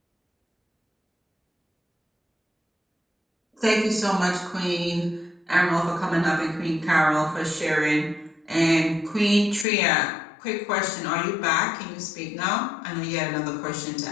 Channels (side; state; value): right; drops out; at 9.7 s